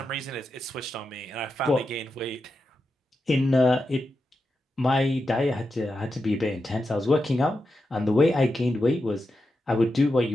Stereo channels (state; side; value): normal; both; correlation 0.88